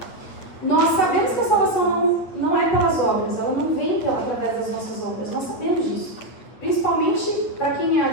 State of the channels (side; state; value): right; late; 8.8 ms